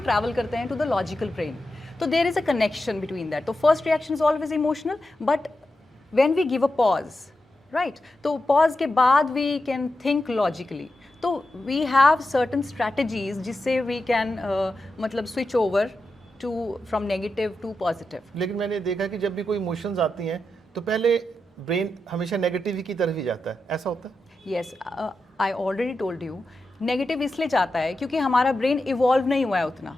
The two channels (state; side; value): normal; both; correlation 0.89